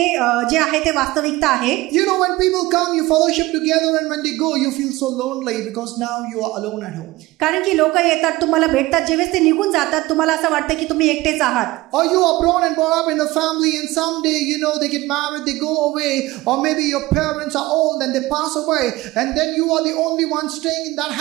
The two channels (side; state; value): left; quieter; 19.4 dB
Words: जे आहे ते वास्तविकता आहे. You know, when people come, you fellowship together, and when they go, you feel so lonely because now you are alone at home. कारण की लोक येतात, तुम्हाला भेटतात, जेव्हा ते निघून जातात तुम्हाला असं वाटतं की तुम्ही एकटेच आहात. Or you are born and brought up in a family, and someday, you know, they get married, they go away, or maybe your parents are old and they pass away, and then you are the only one staying in that